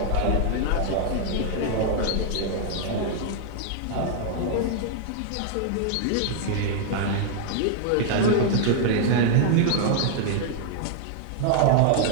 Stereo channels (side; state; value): both; different; correlation -0.01